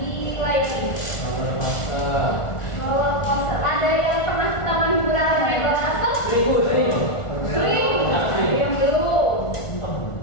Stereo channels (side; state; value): right; late; 1.4 ms